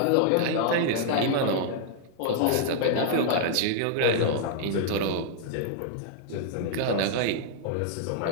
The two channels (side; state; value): both; different; correlation -0.01